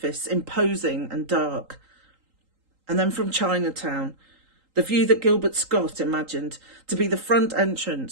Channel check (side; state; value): left; late; 3.8 ms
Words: imposing and dark. And then from Chinatown, the view that Gilbert Scott imagined to be the front